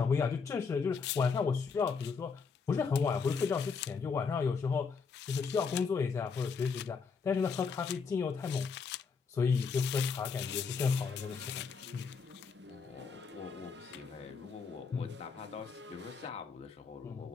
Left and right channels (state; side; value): quieter; right; 5.4 dB